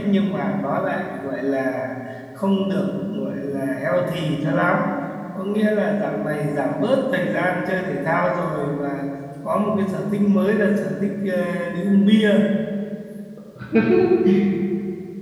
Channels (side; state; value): both; identical; correlation 1.00